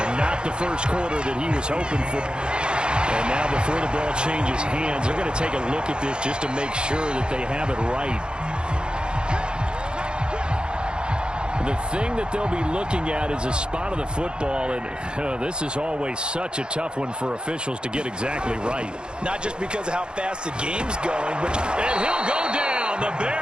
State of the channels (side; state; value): left; late; 0.050 ms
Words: And not the first quarter that he was hoping for. And now before the ball changes hands, they're going to take a look at this just to make sure that they have it right. The thing that they'll be looking at is a spot of the football, and this is always such a tough one for officials to get exactly right. Not just because of how fast the game's going, but... And he'll go down. The